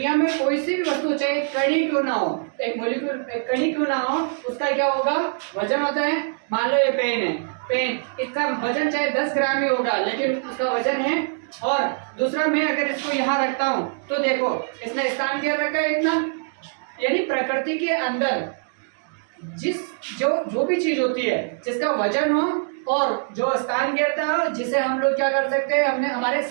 में कोई सी भी वस्तु, चाहे कणी क्यों ना हो, एक मॉलिक्यूल, एक कणी क्यों ना हो, उसका क्या होगा? वजन होता है। मान लो ये पेन है, पेन, इसका वजन चाहे 10 ग्राम ही होगा, लेकिन उसका वजन है। और दूसरा, मैं अगर इसको यहाँ रखता हूँ तो देखो इसने स्थान घेर रखा है इतना। यानी प्रकृति के अंदर जो भी चीज होती है जिसका वजन हो और जो स्थान घेरता हो, जिसे हम लोग क्या कर सकते हैं, हमने हमारे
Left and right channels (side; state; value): left; silent; digital silence